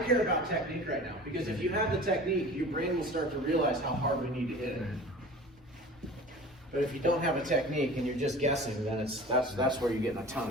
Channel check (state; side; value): normal; both; correlation 0.40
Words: about technique right now, because if you have the technique, your brain will start to realize how hard we need to hit it. But if you don't have a technique and you're just guessing, then that's where you get in a ton